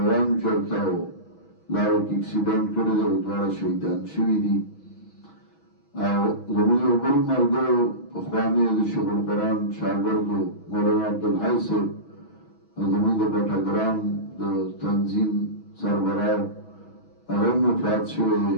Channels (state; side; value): late; right; 6.2 ms